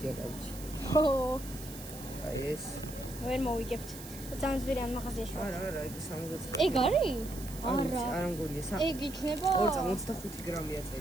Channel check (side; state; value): right; noise; hiss, 14 dB below the sound